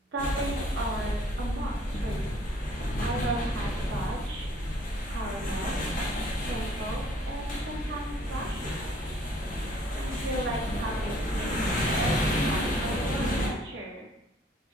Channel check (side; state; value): both; normal; correlation 0.60